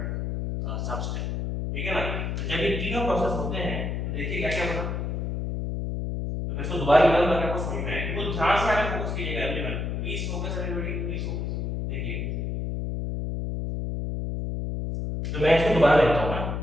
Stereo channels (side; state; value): left; noise; hum, 2 dB below the sound